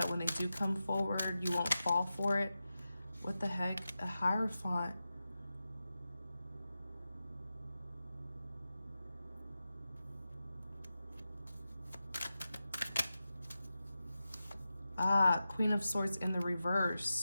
when they do come forward, you won't fall for it. What the heck? A Hierophant. Ah, Queen of Swords in the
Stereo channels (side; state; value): both; inverted; correlation -0.92